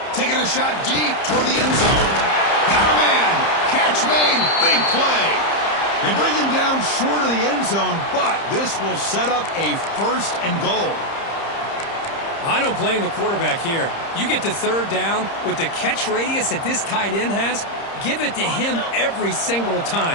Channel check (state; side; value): late; right; 30 ms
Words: Taking a shot deep toward the end zone. Got a man. Catch made. Big play. They bring him down short of the end zone, but this will set up a 1st and goal. I don't blame the quarterback here. You get to 3rd down with the catch radius that this tight end has, give it to him every single